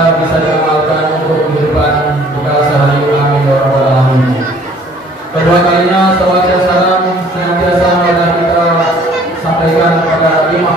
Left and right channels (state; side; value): normal; both; correlation 0.56